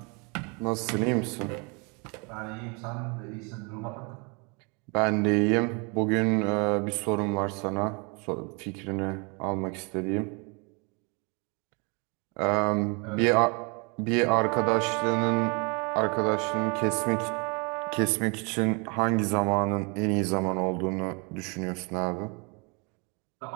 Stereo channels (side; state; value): left; quieter; 31.9 dB